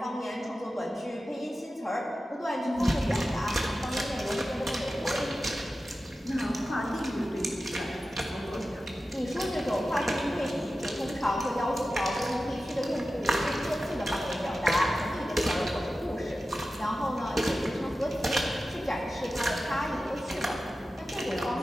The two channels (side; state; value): both; normal; correlation 0.93